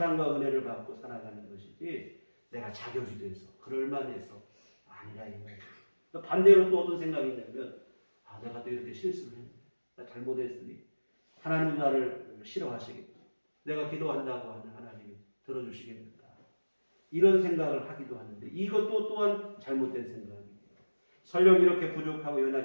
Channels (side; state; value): both; inverted; correlation -1.00